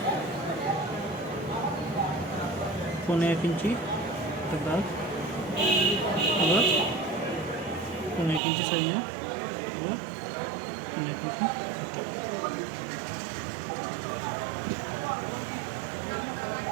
1.5 ইঞ্চি দাগ আবার 1.5 ইঞ্চি সাইজে আবার 1.5 ইঞ্চি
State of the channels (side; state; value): left; drops out; at 8.4 s